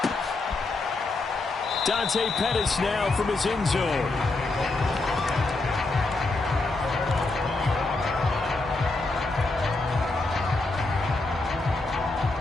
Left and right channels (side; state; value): right; quieter; 3.3 dB